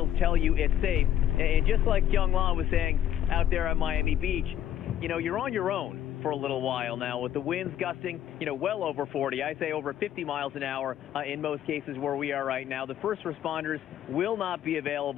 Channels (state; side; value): quieter; right; 10.8 dB